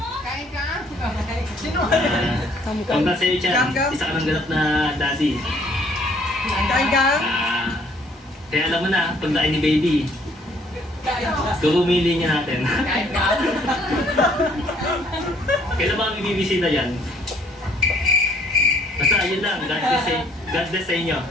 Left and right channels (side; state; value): both; normal; correlation 0.63